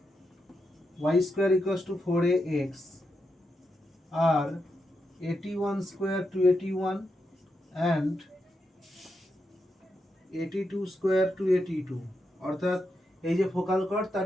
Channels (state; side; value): normal; both; correlation 0.85